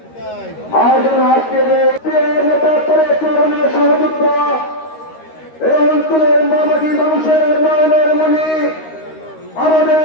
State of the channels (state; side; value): late; right; 13 ms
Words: আয়োজন আজকের সহযোগিত এই অঞ্চলের মামাটি মানুষের নয়নের মণি আমাদের